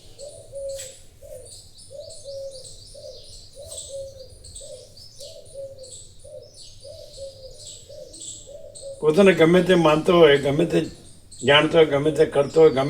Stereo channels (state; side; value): identical; both; correlation 1.00